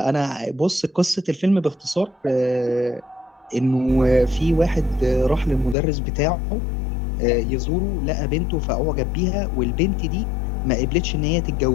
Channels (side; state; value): right; drops out; at 5.8 s